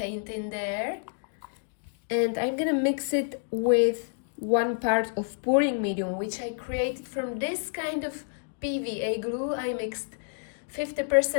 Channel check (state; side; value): silent; right; digital silence